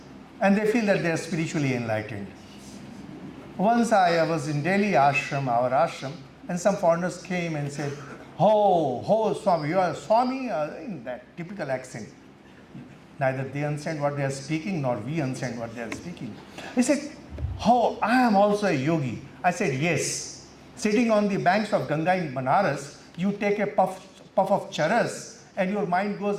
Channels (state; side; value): identical; both; correlation 1.00